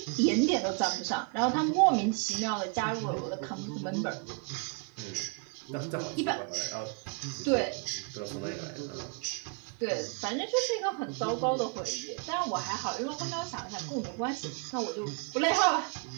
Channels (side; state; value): left; quieter; 36.1 dB